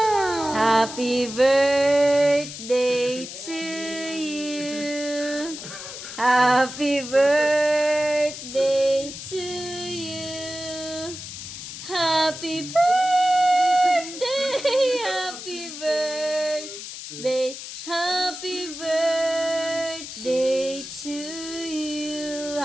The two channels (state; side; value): noise; left; hiss, 10 dB below the sound